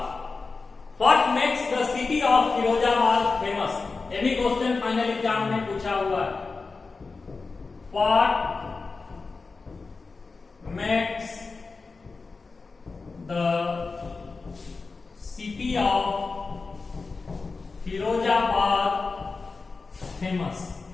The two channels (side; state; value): right; quieter; 4.2 dB